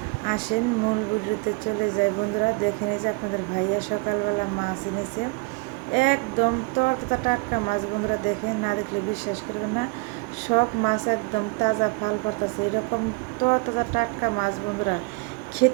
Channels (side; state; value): left; quieter; 29.5 dB